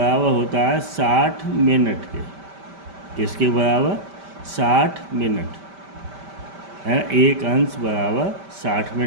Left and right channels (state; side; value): late; left; 5.1 ms